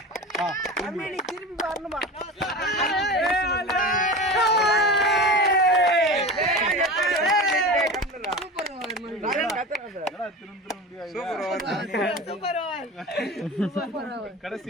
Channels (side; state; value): both; normal; correlation 0.30